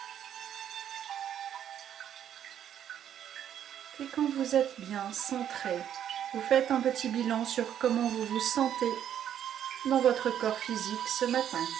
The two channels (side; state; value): left; quieter; 9.9 dB